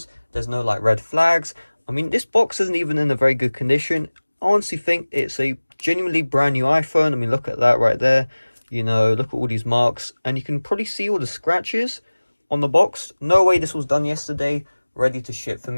there's no like red flags. I mean, this box isn't even in a very good condition. I honestly think it's a genuinely brand new iPhone. I mean, look at that right there. You know, look at all these marks, and you can probably see all the scratches on the box. No way this was done yesterday, ready to ship for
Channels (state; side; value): inverted; both; correlation -1.00